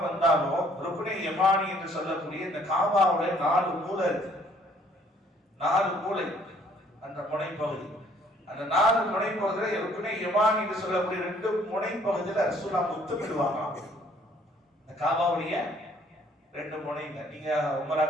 வந்தாலும் ருக்னே யமானி என்று சொல்லக்கூடிய இந்த காபாவுடைய 4 மூலை இருக்கு. 4 மூலை, அந்த முனைப்பகுதி, அந்த 4 முனைப்பகுதியில ருக்னே யமானி என்று சொல்லக்கூடிய 2 முனைப்பகுதியில ரசூலுல்லாஹ் முத்தமிடுவாங்க. இந்த காபாவுடைய 2 முனைங்க. நீங்க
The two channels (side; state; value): both; normal; correlation 0.61